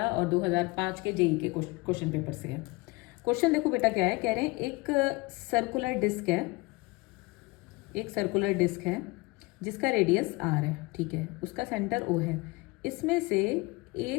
और 2005 के जेई के क्वेश्चन पेपर से है। क्वेश्चन देखो बेटा, क्या है, कह रहे हैं एक सर्कुलर डिस्क है जिसका रेडियस आर है, ठीक है, उसका सेंटर ओ है। इसमें से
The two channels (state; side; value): quieter; right; 24.6 dB